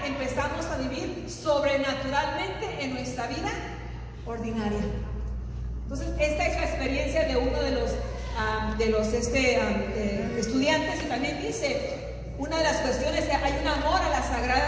empezamos a vivir sobrenaturalmente en nuestra vida ordinaria. Entonces, esta es la experiencia de uno de los estudiantes, y también dice, una de las cuestiones es que hay un amor a las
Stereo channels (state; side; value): identical; both; correlation 1.00